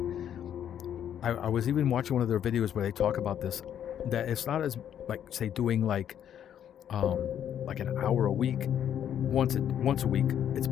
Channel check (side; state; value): right; quieter; 9.7 dB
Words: I was even watching one of their videos where they talk about this, that it's not as like say doing like an hour a week once a week. It's